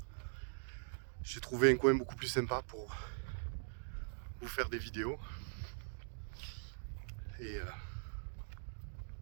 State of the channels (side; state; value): left; silent; digital silence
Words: J'ai trouvé un coin beaucoup plus sympa pour vous faire des vidéos.